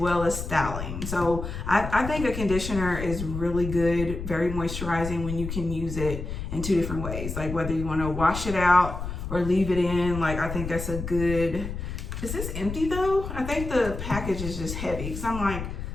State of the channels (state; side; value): noise; left; rumble, 6 dB below the sound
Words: as styling. So I think a conditioner is really good, very moisturizing when you can use it in two different ways. Like whether you want to wash it out or leave it in, like I think that's a good, is this empty though? I think the package is just heavy because I'm like,